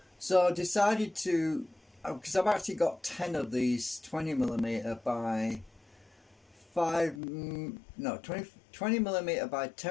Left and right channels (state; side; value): drops out; right; at 7.2 s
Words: I decided to, because I've actually got 10 of these 20mm by 20mm by